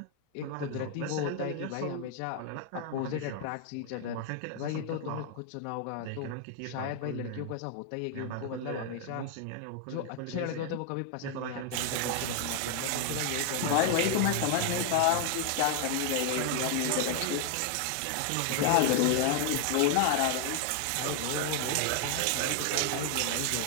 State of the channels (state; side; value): different; both; correlation 0.00